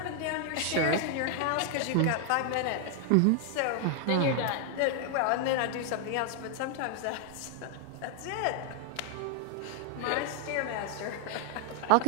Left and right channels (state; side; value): different; both; correlation 0.00